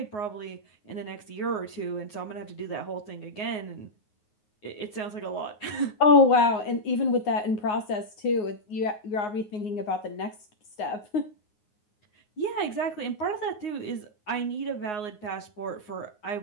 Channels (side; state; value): right; late; 9.5 ms